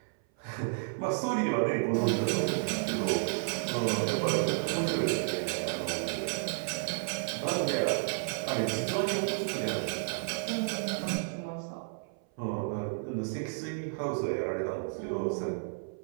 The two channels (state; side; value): silent; left; 56 dB below the other